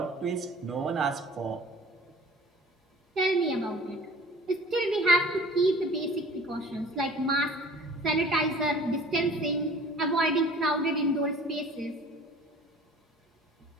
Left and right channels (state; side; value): normal; both; correlation 0.46